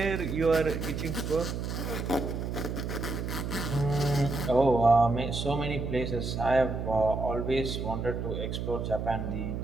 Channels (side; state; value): right; noise; hum, 4 dB below the sound